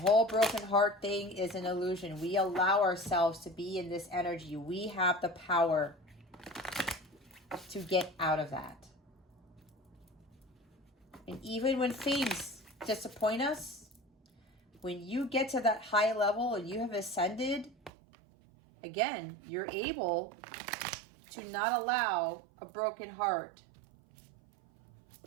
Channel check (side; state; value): left; drops out; at 17.9 s